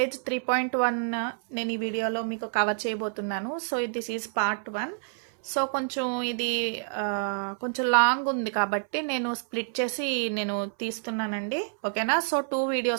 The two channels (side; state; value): left; silent; 59 dB below the other